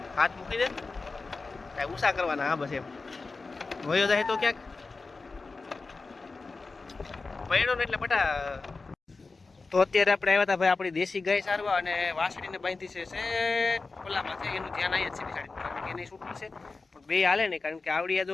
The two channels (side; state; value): right; quieter; 3.9 dB